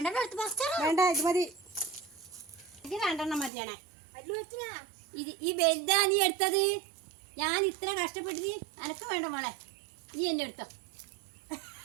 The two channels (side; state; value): left; drops out; at 3.5 s